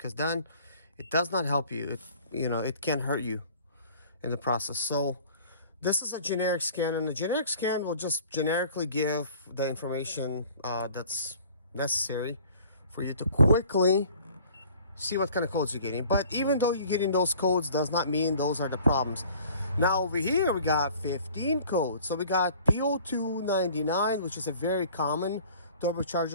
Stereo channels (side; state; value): both; inverted; correlation -0.50